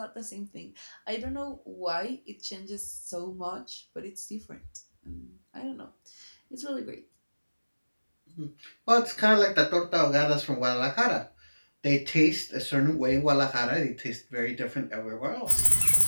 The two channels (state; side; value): inverted; both; correlation -1.00